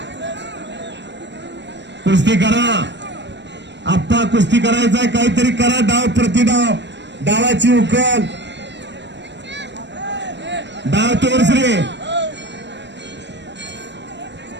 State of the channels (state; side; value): late; left; 0.52 ms